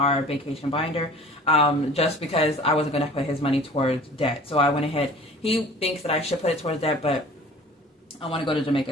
vacation binder just because I wasn't going to put his money towards debt. So I went ahead. He thinks that I should put it towards debt, but I want to go to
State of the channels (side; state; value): both; normal; correlation 0.46